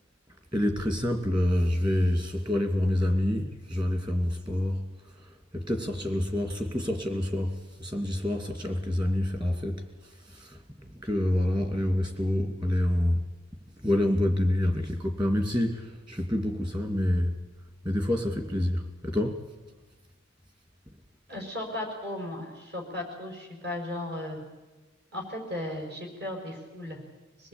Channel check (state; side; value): normal; both; correlation 0.92